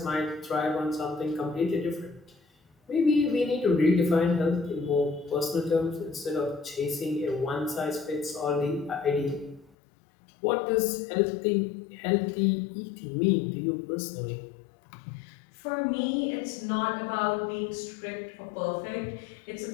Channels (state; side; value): drops out; right; at 9.7 s